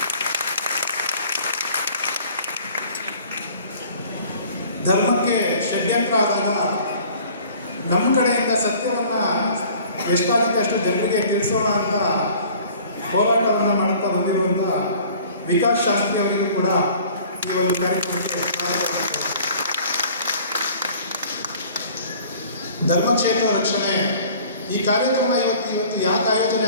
ಧರ್ಮಕ್ಕೆ ಷಡ್ಯಂತ್ರ ಆದಾಗ ನಮ್ಮ ಕಡೆಯಿಂದ ಸತ್ಯವನ್ನು ಎಷ್ಟಾಗುತ್ತೆ ಅಷ್ಟು ಜನರಿಗೆ ತಿಳಿಸೋಣ ಅಂತ ಹೋರಾಟವನ್ನು ಮಾಡುತ್ತಾ ಬಂದಿರುವಂಥ ವಿಕಾಸ್ ಶಾಸ್ತ್ರಿ ಅವರಿಗೂ ಕೂಡ ಈ ಒಂದು ಕಾರ್ಯಕ್ರಮಕ್ಕೆ ಸ್ವಾಗತ. ಧರ್ಮಕ್ಷೇತ್ರ ರಕ್ಷಣೆ ಈ ಕಾರ್ಯಕ್ರಮ ಇವತ್ತು ಯಾಕೆ ಆಯೋಜನೆ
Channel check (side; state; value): both; inverted; correlation -0.50